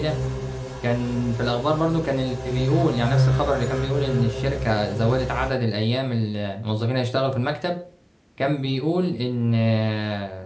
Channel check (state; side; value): identical; both; correlation 1.00